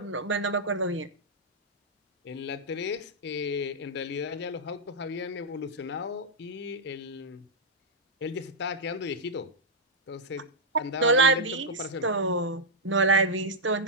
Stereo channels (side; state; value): both; normal; correlation -0.07